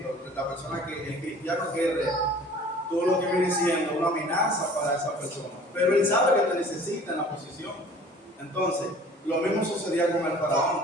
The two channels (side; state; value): both; normal; correlation 0.48